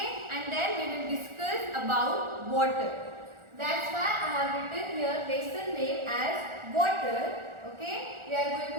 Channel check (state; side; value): late; left; 1.4 ms